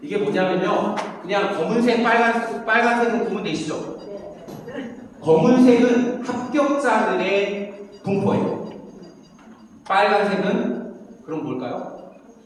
이게 뭐냐면요. 그냥 검은색, 빨간색은 구분 되시죠? 검은색은 합격자들의 분포예요. 빨간색은 그럼 뭘까요?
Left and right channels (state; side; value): identical; both; correlation 1.00